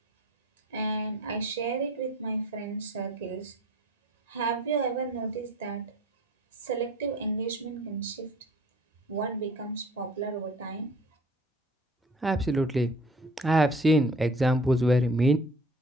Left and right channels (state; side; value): normal; both; correlation 0.49